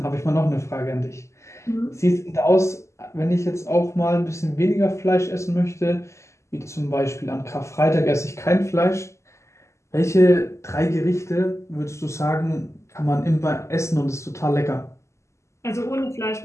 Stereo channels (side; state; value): right; late; 0.14 ms